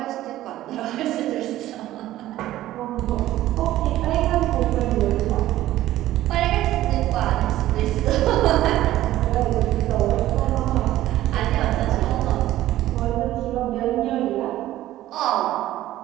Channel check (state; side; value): quieter; left; 14.5 dB